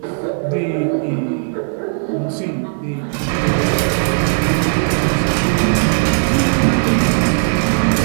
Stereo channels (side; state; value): left; silent; 59 dB below the other